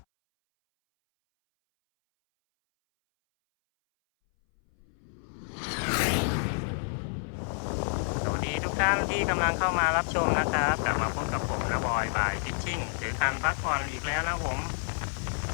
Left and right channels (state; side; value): silent; right; 58 dB below the other